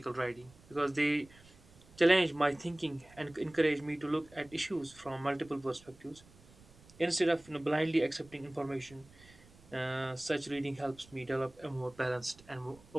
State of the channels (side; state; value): right; noise; rumble, 25 dB below the sound